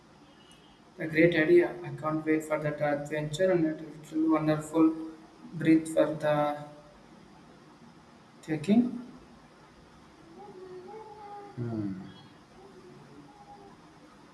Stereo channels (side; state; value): both; identical; correlation 1.00